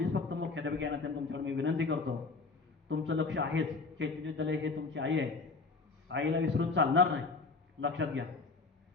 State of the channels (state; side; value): quieter; right; 4.0 dB